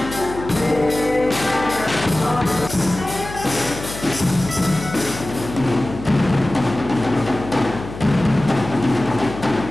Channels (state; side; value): noise; left; hum, 11 dB below the sound